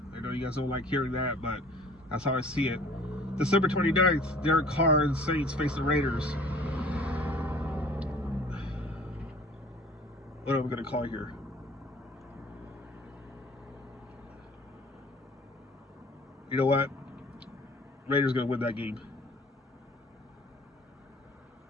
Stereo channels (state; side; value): normal; both; correlation 0.50